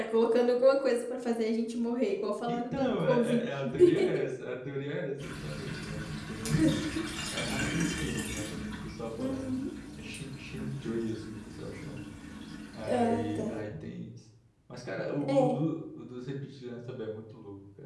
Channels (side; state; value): both; identical; correlation 1.00